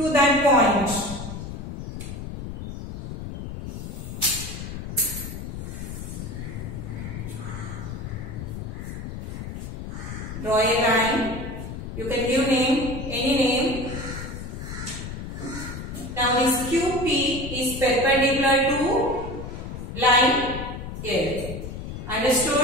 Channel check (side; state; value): left; noise; rumble, 7 dB below the sound